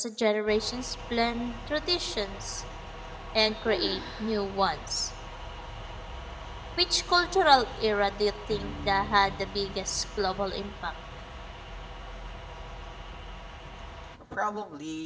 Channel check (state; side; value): identical; both; correlation 1.00